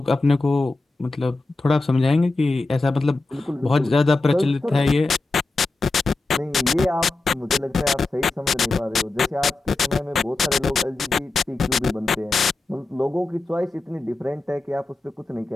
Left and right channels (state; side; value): quieter; right; 3.3 dB